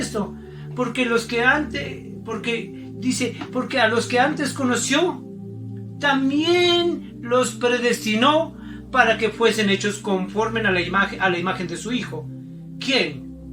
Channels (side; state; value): both; identical; correlation 1.00